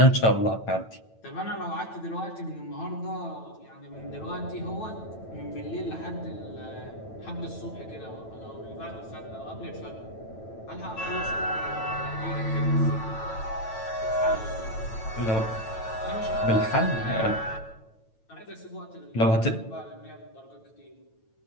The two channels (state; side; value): late; right; 9.1 ms